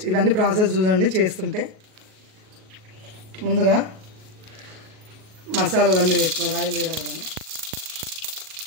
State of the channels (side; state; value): left; late; 38 ms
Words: ఇవన్నీ ప్రాసెస్ చూడండి చేస్తుంటే. ముందుగా మసాలాలన్నీ వేసుకోవాలి. ఆయిల్ వేయగానే